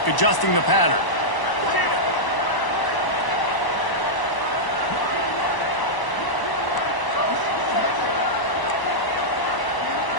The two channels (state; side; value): late; right; 1.0 ms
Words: adjusting the pattern.